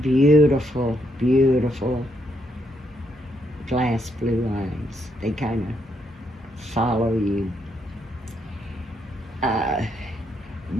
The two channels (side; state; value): both; normal; correlation 0.76